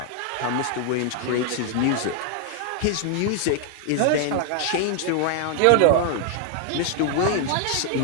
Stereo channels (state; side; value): different; both; correlation 0.00